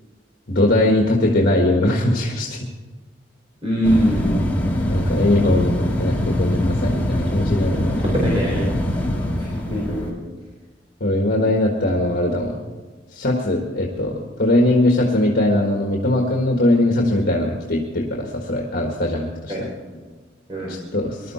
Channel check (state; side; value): normal; both; correlation 0.60